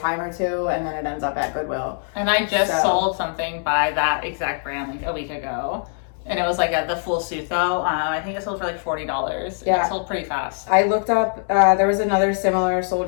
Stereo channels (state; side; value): silent; right; digital silence